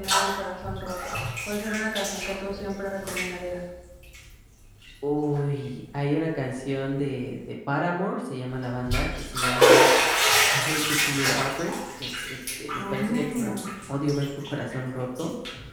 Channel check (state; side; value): identical; both; correlation 1.00